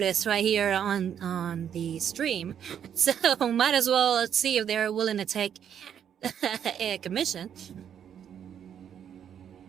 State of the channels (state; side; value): quieter; left; 8.8 dB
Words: right here on the stream, so might as well see if they're willing to take a commission.